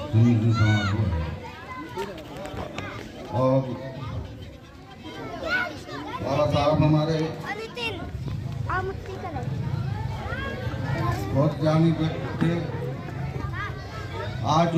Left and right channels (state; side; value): identical; both; correlation 1.00